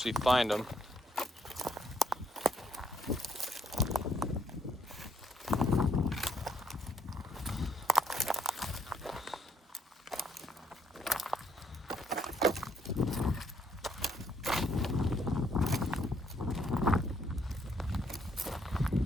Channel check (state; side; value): normal; both; correlation 0.71